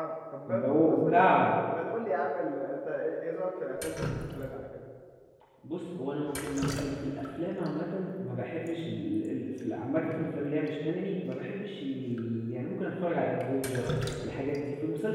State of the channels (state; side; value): identical; both; correlation 1.00